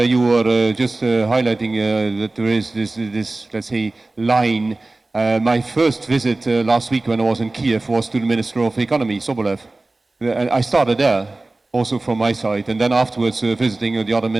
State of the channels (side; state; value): left; quieter; 3.1 dB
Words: you were just highlighting that there is this, let's say, line. My first visit last week when I was in Kiev was to the Minister of Economy, Sobolev. I started there, also from my side, and then afterwards visiting the other